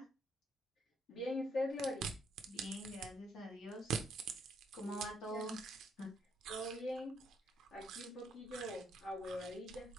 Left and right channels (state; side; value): normal; both; correlation 0.72